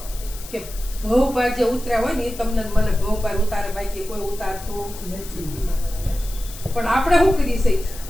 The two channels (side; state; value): left; noise; hiss, 15 dB below the sound